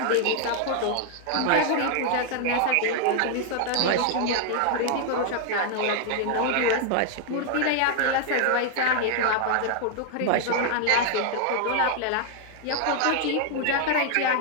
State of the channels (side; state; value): both; different; correlation 0.00